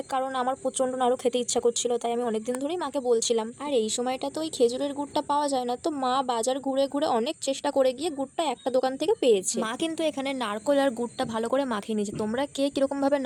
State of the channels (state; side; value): identical; both; correlation 1.00